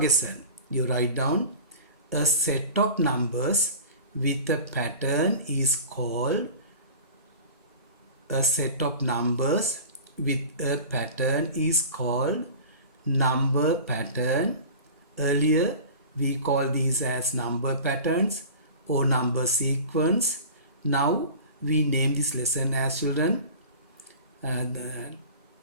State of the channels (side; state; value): both; inverted; correlation -0.38